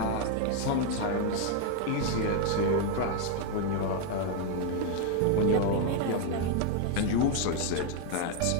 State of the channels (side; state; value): both; different; correlation 0.00